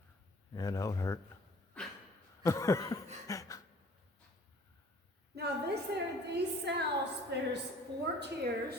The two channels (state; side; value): normal; both; correlation 0.53